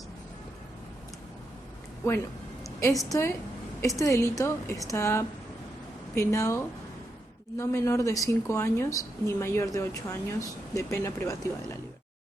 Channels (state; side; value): normal; both; correlation 0.83